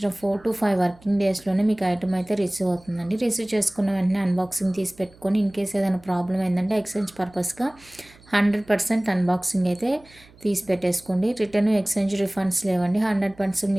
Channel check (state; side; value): noise; right; hum, 26 dB below the sound